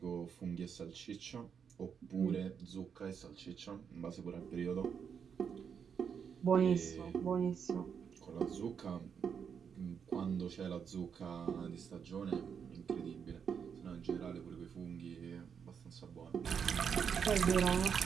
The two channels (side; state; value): left; quieter; 7.1 dB